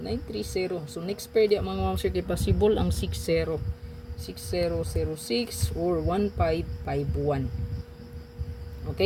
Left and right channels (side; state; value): both; identical; correlation 1.00